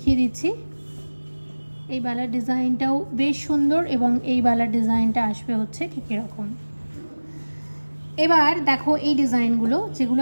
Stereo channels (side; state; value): both; inverted; correlation -1.00